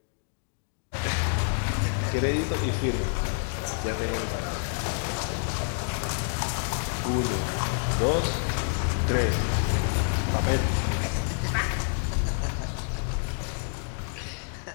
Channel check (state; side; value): silent; right; digital silence